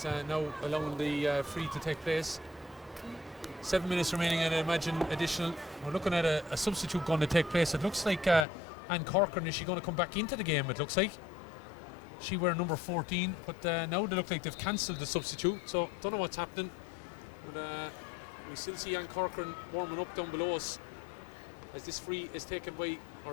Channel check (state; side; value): drops out; right; at 8.5 s